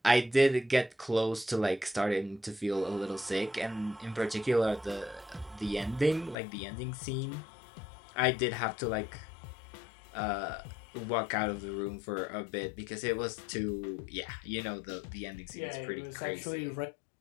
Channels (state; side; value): drops out; right; at 6.4 s